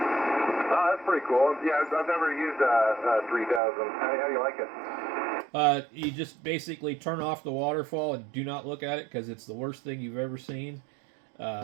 that's pretty cool. Yeah, I've never used a 3000. How do you like it? You just basically turn off the waterfall and do not look at it because it's the worst thing you've ever seen.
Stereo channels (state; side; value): drops out; left; at 3.6 s